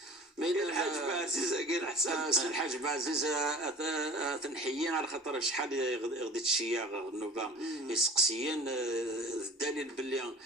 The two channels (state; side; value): normal; both; correlation 0.41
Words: الحاج بعزيز قال حسن الحاج بعزيز تنحيين على خاطر شحال غديت الشياغ النوبه يسقسيين الدليل باللي